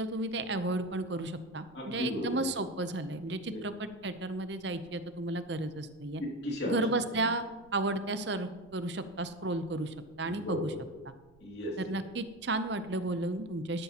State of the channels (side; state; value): right; noise; rumble, 28 dB below the sound